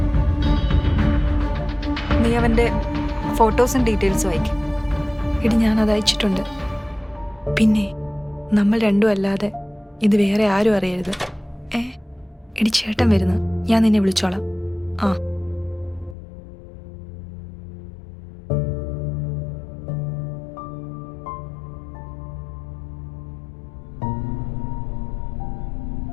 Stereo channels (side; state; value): right; drops out; at 16.2 s